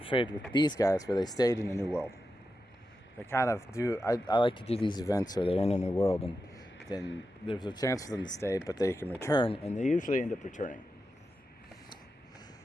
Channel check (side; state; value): both; normal; correlation 0.90